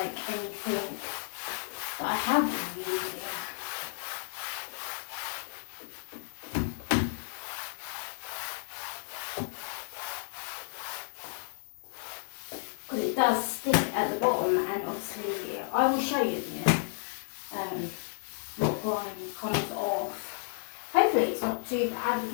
anything that I have been using. Because it does stick at the bottom, and obviously I will show you in a minute what grime comes off. Hopefully it's not too bad,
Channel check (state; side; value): silent; right; 56 dB below the other